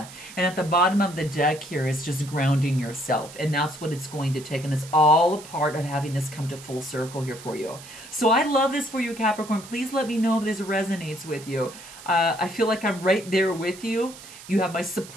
And at the bottom of the deck here is just grounding yourself. And that's what it's going to take. And it's all a part of having this come to full circle here for you. So I love this for you, Capricorn. Please let me know if this resonates with you. I feel like I'm right there with you. You have my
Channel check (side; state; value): right; noise; hiss, 17 dB below the sound